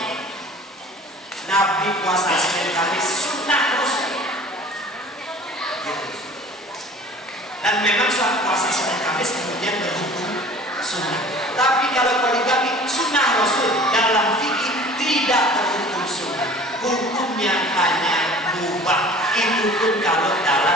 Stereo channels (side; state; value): both; normal; correlation 0.46